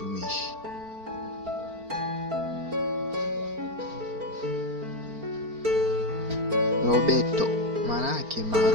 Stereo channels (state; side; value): late; left; 4.4 ms